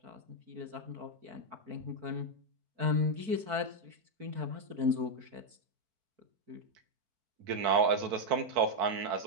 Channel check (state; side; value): late; left; 4.6 ms